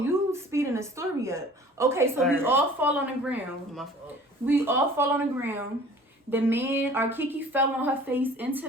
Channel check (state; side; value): normal; both; correlation 0.48